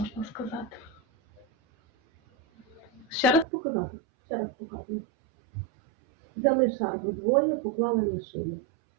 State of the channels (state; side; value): drops out; left; at 3.5 s